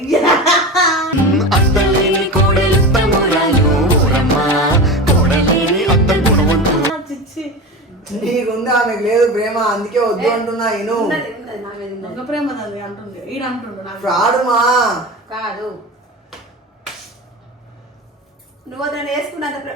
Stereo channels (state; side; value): normal; both; correlation 0.27